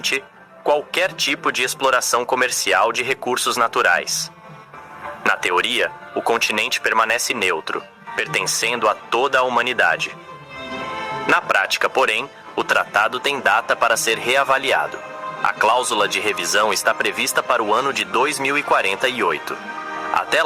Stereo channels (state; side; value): identical; both; correlation 1.00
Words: qualquer tipo de exploração comercial de recursos naturais. Na teoria, o continente permanece neutro, pertencendo a toda a humanidade. Na prática, porém, o tratado tem data para ser reavaliado. A cláusula de revisão está prevista para o ano de 2048. Até